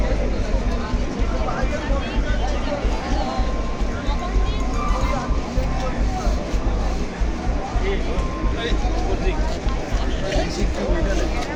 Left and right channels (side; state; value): both; identical; correlation 1.00